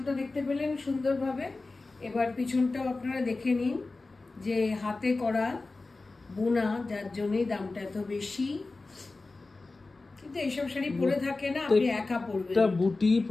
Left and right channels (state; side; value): quieter; right; 3.5 dB